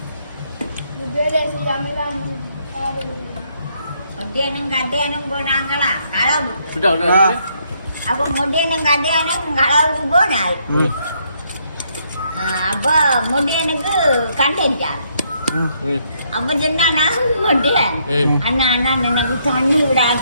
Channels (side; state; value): both; inverted; correlation -0.72